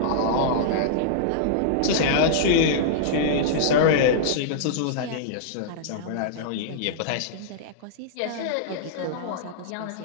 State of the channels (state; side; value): different; both; correlation -0.02